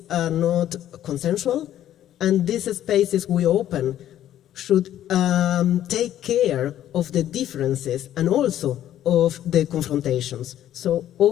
are not consensual, and these spaces we open should take care of the differences and also of the confrontations. So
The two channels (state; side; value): quieter; right; 11.8 dB